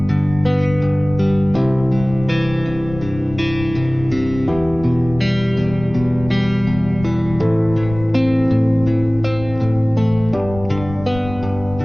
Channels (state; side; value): noise; left; rumble, 13 dB below the sound